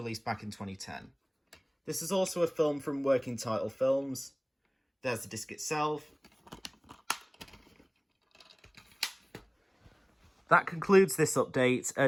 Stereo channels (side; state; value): both; identical; correlation 1.00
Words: back in 2010. This is also a film from Working Title Films. There's the disc itself. That concludes this update,